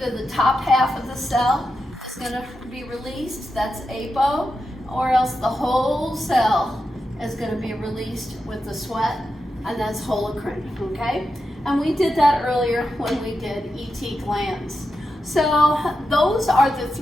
the top half of the cell is going to be released, that's apo, or else the whole cell is going to be released with the sweat, and that's holocrine, okay? And we did that earlier when we did ET glands. So those are the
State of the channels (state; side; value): normal; both; correlation 0.88